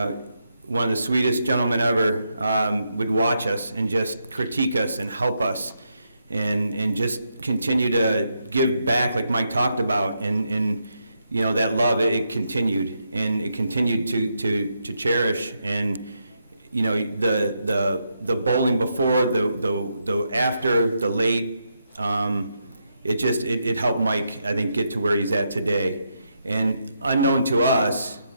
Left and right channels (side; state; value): both; inverted; correlation -0.81